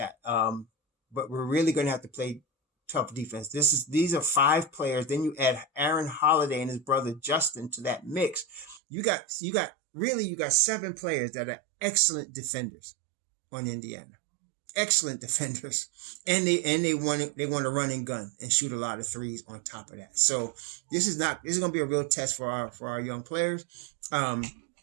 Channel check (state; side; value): drops out; left; at 8.8 s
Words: But we're really going to have to play tough defense. These are 5 players. Then you add Aaron Holiday and his brother Justin to that mix. You got 7 players that are excellent defenders on Indiana. Excellent defenders, and they want to run and gun and shoot a lot of threes on top of that. So this is going to be a real test for our young players. And